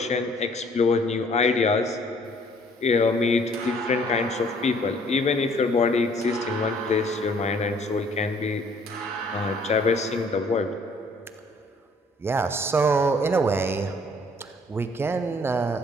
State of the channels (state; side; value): normal; both; correlation 0.59